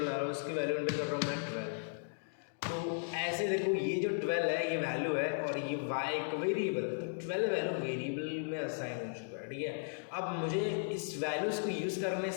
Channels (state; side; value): silent; right; digital silence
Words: बना रहा हूँ, उसकी वैल्यू एंटर कर रहा हूँ मैं 12। तो ऐसे देखो ये जो 12 है ये वैल्यू है और ये y एक वेरिएबल, 12 वैल्यू वेरिएबल में असाइन हो चुका है, ठीक है। अब मुझे इस वैल्यूज़ को यूज़ करने